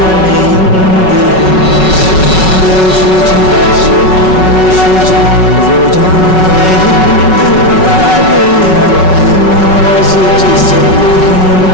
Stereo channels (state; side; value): late; right; 5.4 ms